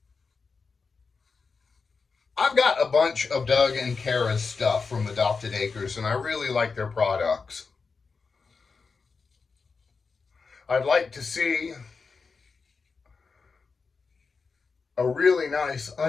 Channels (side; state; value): right; quieter; 4.8 dB